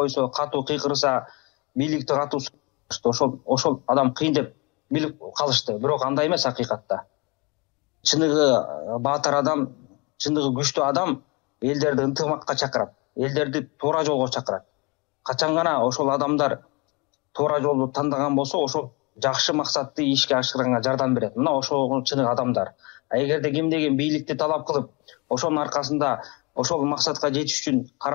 катуу кыйкырса, бийликти катуу ошол адам кыйын деп билип калышты. Бирок андай эмес акыйкатта. Чыныгы баатыр адам, чыныгы күчтүү адам элдерди ынтымакка чакырат. элдерди туура жолго чакырат. Качан гана ошол адамдар туура жолду тандаган болсо, ошол жакшы максатты ишке ашырганга жардам берет. Мына ошол чыныгы адамдар. Эгерде кимдеген бийликти талап кылып, ошонун аркасында ошол максатка жетиш үчүн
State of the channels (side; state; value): right; quieter; 28.3 dB